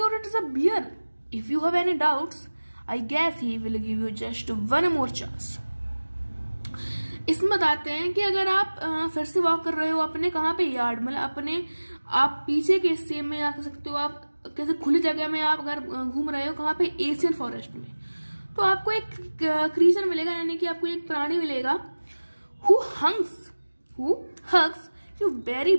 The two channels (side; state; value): both; inverted; correlation -1.00